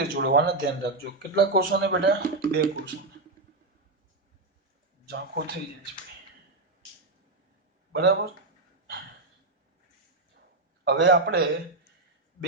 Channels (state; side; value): quieter; left; 3.2 dB